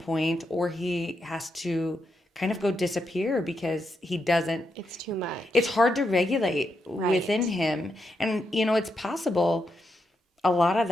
or he has to kind of go disappear because he doesn't. It's too much. It's hard to regulate within him. And, it's possible a lot of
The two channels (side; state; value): both; normal; correlation 0.83